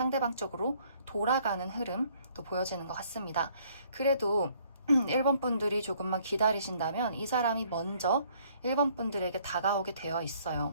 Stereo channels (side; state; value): both; inverted; correlation -0.62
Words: 쪽으로 돌아가는 흐름도 보여지는 것 같습니다. 그래도 1번 분들이 조금만 기다리신다면 이 사람이 먼저 1번 분들에게 다가오게 되어 있어요.